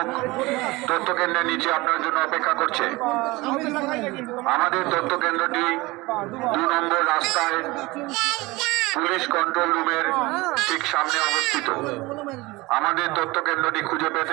তথ্য কেন্দ্রের নিচে আপনার জন্য অপেক্ষা করছে। আমাদের তথ্য কেন্দ্রটি 2 নম্বর রাস্তায় পুলিশ কন্ট্রোল রুমের ঠিক সামনে অবস্থিত। আমাদের তথ্য কেন্দ্রটি খুঁজে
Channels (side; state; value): left; quieter; 21.9 dB